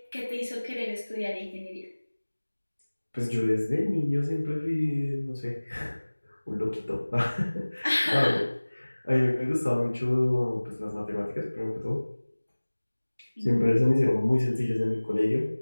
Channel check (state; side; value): inverted; both; correlation -1.00